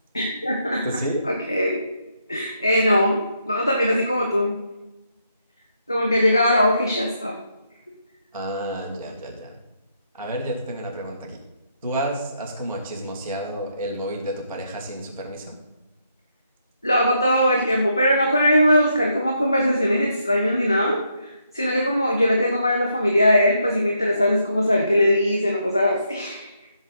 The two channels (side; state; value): both; inverted; correlation -0.77